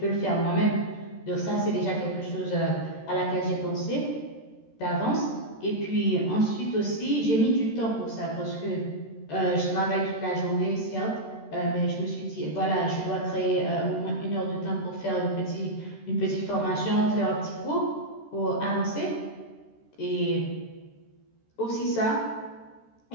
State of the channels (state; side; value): late; right; 13 ms